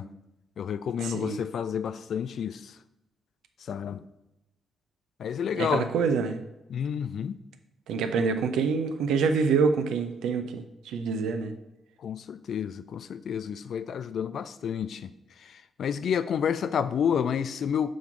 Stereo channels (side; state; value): both; normal; correlation 0.61